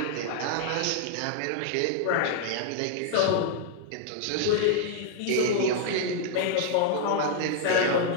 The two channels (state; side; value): different; both; correlation 0.00